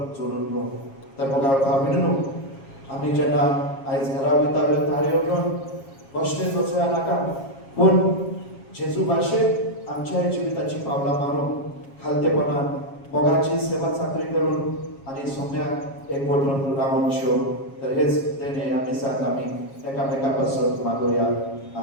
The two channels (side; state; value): right; late; 7.3 ms